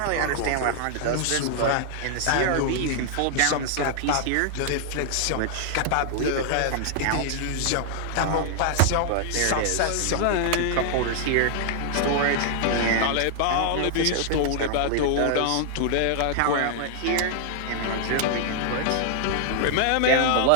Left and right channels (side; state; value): both; different; correlation 0.00